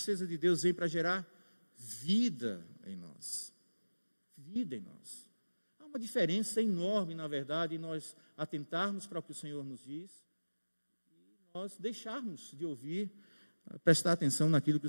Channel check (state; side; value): inverted; both; correlation -1.00